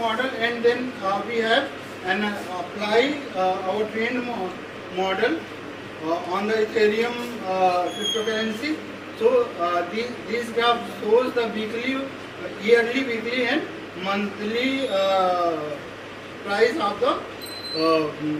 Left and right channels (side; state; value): both; identical; correlation 1.00